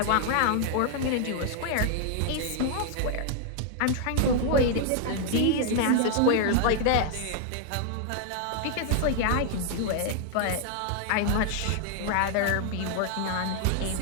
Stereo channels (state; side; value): different; both; correlation 0.00